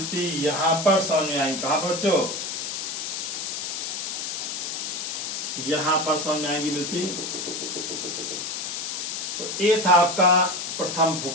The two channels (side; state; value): left; noise; hiss, 4 dB below the sound